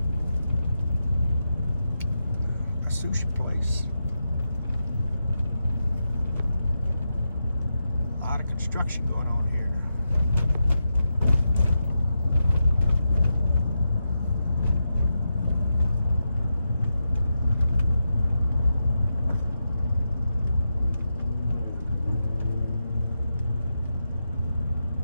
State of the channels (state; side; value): inverted; both; correlation -0.87